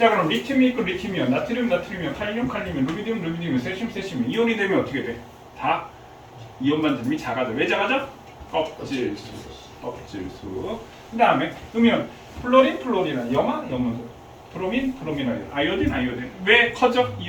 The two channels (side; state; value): both; identical; correlation 1.00